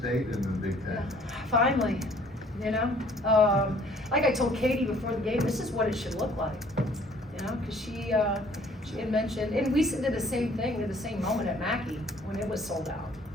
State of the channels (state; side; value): normal; both; correlation 0.57